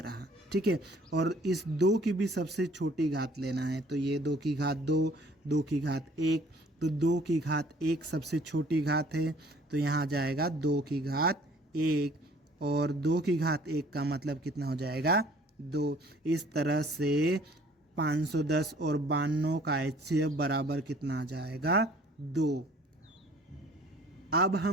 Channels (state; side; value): normal; both; correlation 0.55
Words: रहा। ठीक है, और इस 2 की भी सबसे छोटी घात लेना है, तो ये 2 की घात 2, 2 की घात 1, तो 2 की घात 1 सबसे छोटी घात है, तो यहाँ जाएगा 2 की घात 1, और 2 की घात 1 का मतलब कितना हो जाएगा? 2। इस तरह से 510 और 92 का HCF बराबर कितना आ जाएगा? 2। अब